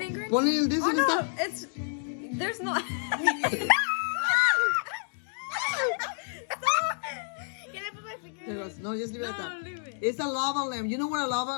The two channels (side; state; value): right; silent; digital silence